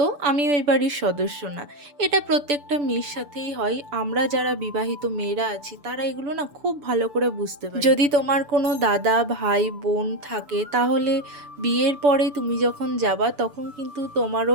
আমি ওই বাড়ির সদস্য না। এটা প্রত্যেকটা মেয়ের সাথেই হয়। আমরা যারা বিবাহিত মেয়েরা আছি তারা এগুলো না খুব ভালো করে বুঝতে পারি। যদি তোমার কোনো দাদা ভাই বোন থাকে তাহলে বিয়ের পরে তুমি যখন যাবা তখন কিন্তু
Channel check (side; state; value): left; late; 6.9 ms